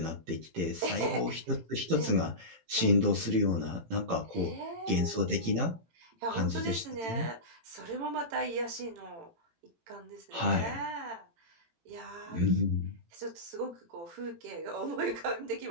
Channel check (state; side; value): late; left; 18 ms